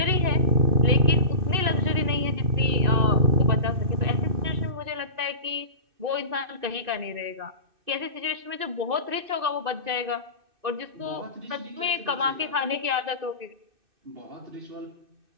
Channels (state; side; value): late; left; 2.6 ms